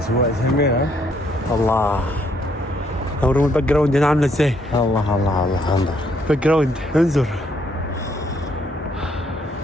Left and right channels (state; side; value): normal; both; correlation 0.70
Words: جميل. الله. اوريهم الباك جراوند هنا عاملة ازاي. الله الله الله انظر باك جراوند انظر.